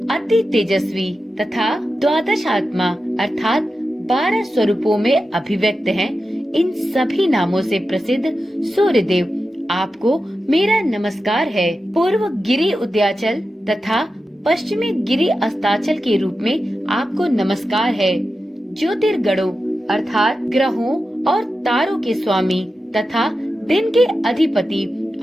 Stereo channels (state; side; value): normal; both; correlation 0.91